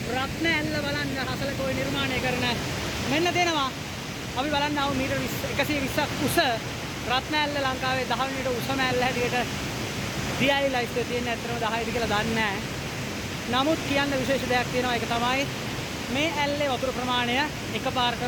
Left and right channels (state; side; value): identical; both; correlation 1.00